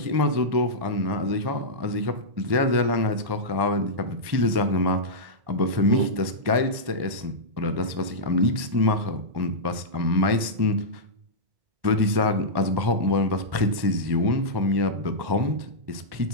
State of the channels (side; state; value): left; late; 1.1 ms